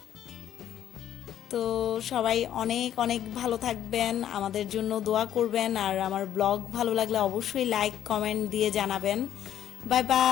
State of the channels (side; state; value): right; quieter; 10.8 dB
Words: তো সবাই অনেক অনেক ভালো থাকবেন, আমাদের জন্য দোয়া করবেন, আর আমার ব্লগ ভালো লাগলে অবশ্যই লাইক কমেন্ট দিয়ে জানাবেন। Bye